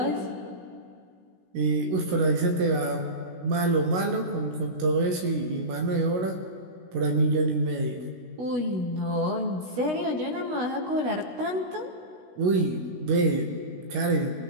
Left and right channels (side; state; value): left; late; 16 ms